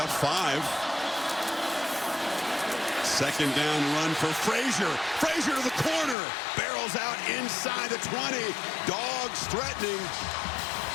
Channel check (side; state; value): right; drops out; at 6.2 s